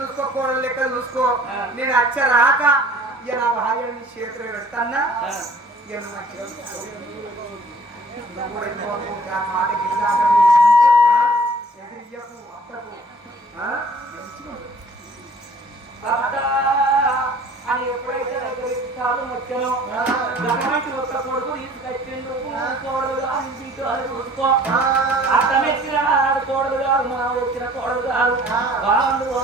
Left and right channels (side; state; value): both; normal; correlation 0.52